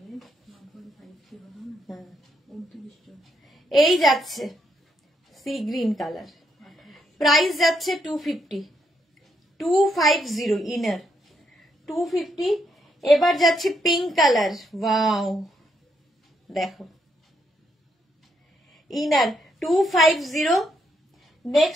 এই যাচ্ছে সি গ্রিন কালার, প্রাইস যাচ্ছে 250। 250 ইনার 250। এবার যাচ্ছে পিঙ্ক কালার, ওয়াও দেখো ইনার 250।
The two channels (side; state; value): both; normal; correlation 0.77